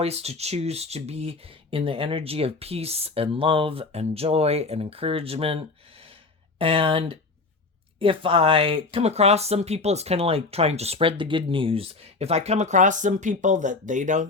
to choose to be in the energy of peace and love and joy and encouragement. And if I come across some people, it's kind of like trying to spread the good news. If I come across some people that they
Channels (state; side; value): quieter; right; 3.8 dB